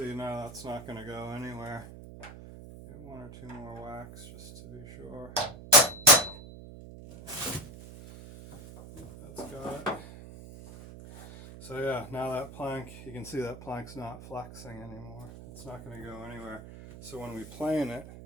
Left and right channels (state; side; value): noise; right; hum, 14 dB below the sound